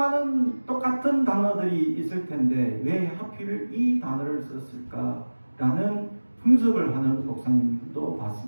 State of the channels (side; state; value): both; inverted; correlation -1.00